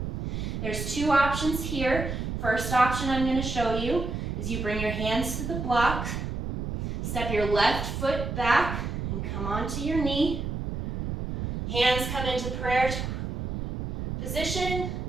There's two options here. First option I'm going to show you is you bring your hands to the block, step your left foot back, and come onto your knee. Hands come into prayer position,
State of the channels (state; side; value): noise; right; rumble, 4 dB below the sound